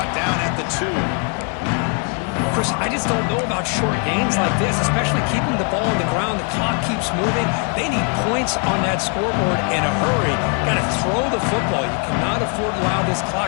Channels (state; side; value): quieter; right; 38.2 dB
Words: down at the 2. Chris, I just don't know about short gains like this, especially keeping the ball on the ground. The clock keeps moving. They need points on that scoreboard in a hurry. Got to throw the football. You cannot afford to allow this